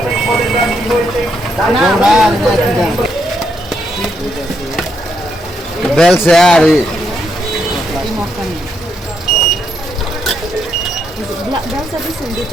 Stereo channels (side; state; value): both; normal; correlation 0.77